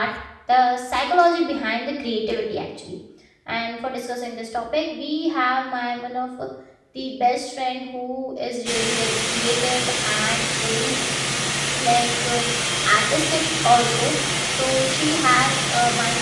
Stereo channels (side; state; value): both; identical; correlation 1.00